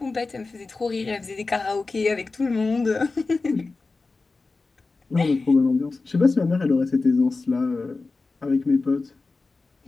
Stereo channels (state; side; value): quieter; right; 3.8 dB